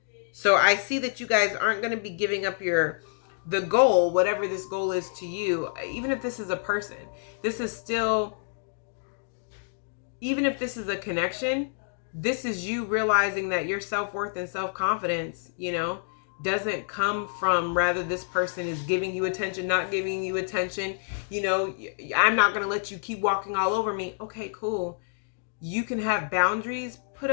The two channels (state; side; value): silent; right; digital silence